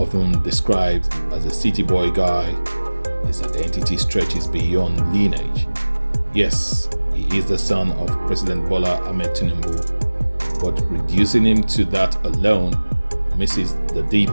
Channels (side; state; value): both; inverted; correlation -1.00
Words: described as a city boy guy, his identity stretches beyond lineage. Yes, he is the son of President Bola Ahmed Tinubu, but reducing him to that alone misses the